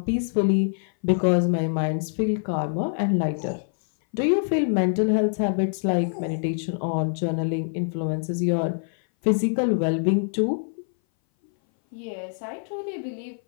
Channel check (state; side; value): silent; right; 59 dB below the other